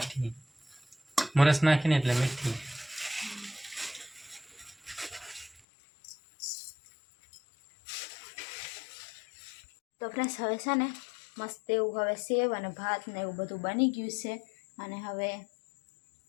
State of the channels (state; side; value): drops out; right; at 5.6 s